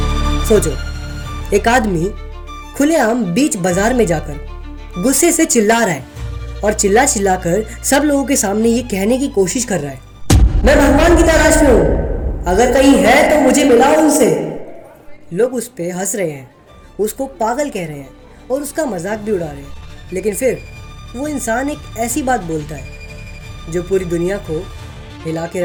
सोचो, एक आदमी खुलेआम बीच बाजार में जाकर गुस्से से चिल्ला रहा है और चिल्ला चिल्लाकर सब लोगों के सामने ये कहने की कोशिश कर रहा है, मैं भगवान की तलाश में हूं, अगर कहीं है तो मुझे मिलाओ उनसे। लोग उस पे हंस रहे हैं, उसको पागल कह रहे हैं और उसका मजाक भी उड़ा रहे हैं। लेकिन फिर वो इंसान एक ऐसी बात बोलता है जो पूरी दुनिया को हिला के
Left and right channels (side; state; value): both; identical; correlation 1.00